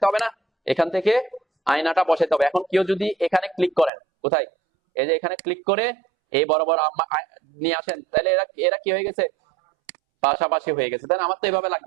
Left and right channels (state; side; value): drops out; left; at 3.9 s